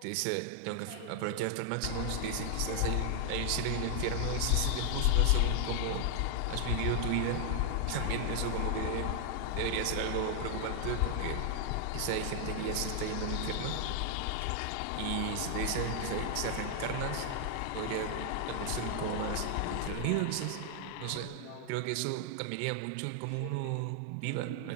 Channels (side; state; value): both; different; correlation 0.00